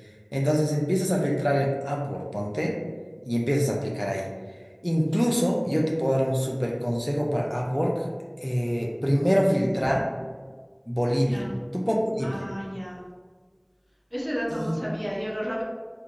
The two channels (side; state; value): both; identical; correlation 1.00